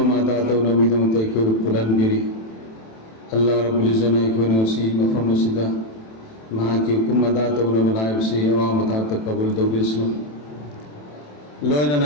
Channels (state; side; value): late; right; 27 ms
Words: मादा तो नवीदों तैकोगो पुलन बिरी अल्लाह रब्बुल इज़्ज़त ऐको नसी मफहम सिदा महा की हुकुम मादा तो नबलाइब से अवाम ता कबूल दो बिस्म